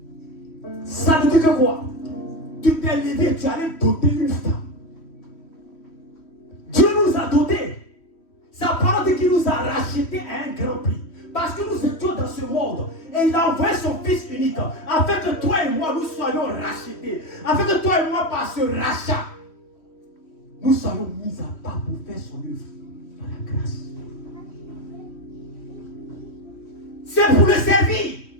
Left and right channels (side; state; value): right; late; 3.1 ms